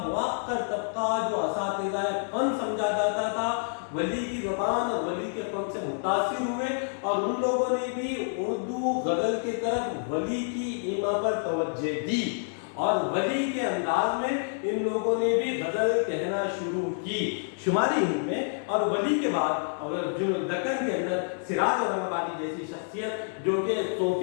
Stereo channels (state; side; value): silent; right; 59 dB below the other